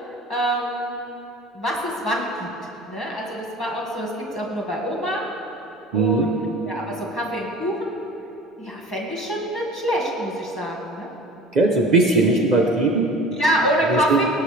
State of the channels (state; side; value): normal; both; correlation 0.41